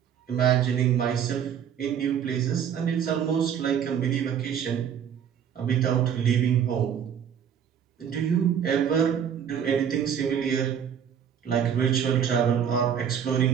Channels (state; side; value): quieter; left; 8.4 dB